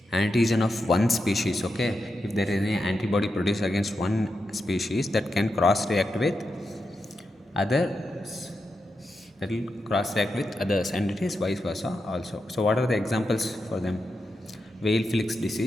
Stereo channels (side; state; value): both; normal; correlation 0.87